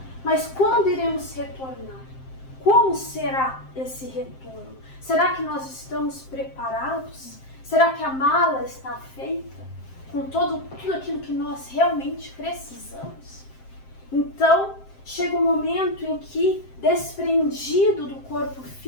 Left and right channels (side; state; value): right; late; 7.6 ms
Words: mas quando iremos retornar? Como será esse retorno? Será que nós estamos preparados? Será que a mala está feita com tudo aquilo que nós realmente precisamos? Então, chega um momento em que, desprendido do corpo